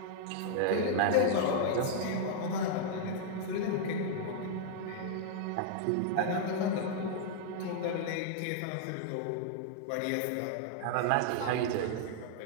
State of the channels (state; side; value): different; both; correlation -0.01